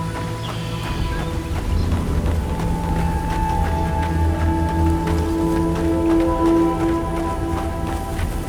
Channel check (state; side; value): identical; both; correlation 1.00